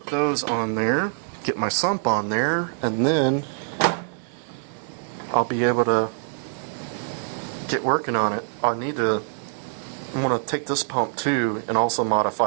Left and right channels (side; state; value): left; silent; digital silence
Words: those on there, get my sump on there, and then I'll be able to get working on it. I'm going to take this pump too and also